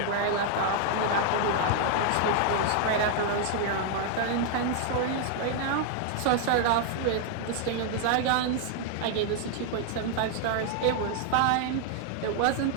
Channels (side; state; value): both; different; correlation 0.00